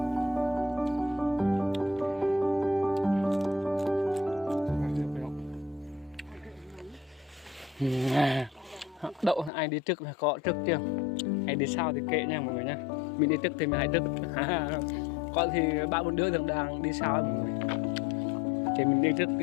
Đậu ai đi trước là có trước chưa, ai đi sau thì kệ nha mọi người nha. Mình đi trước thì mình hãy trước. Có thì 3-4 đứa đang đi sau mọi người, thì mình đi trước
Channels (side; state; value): right; drops out; at 9.5 s